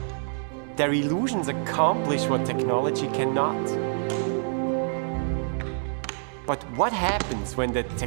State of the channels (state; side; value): silent; left; digital silence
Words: Their illusions accomplish what technology cannot. But what happens when the